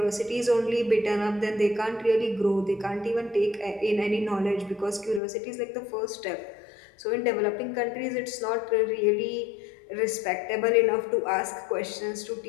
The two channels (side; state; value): right; drops out; at 5.2 s